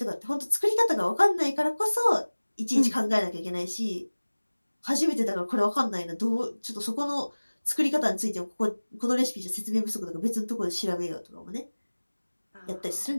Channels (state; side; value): inverted; both; correlation -1.00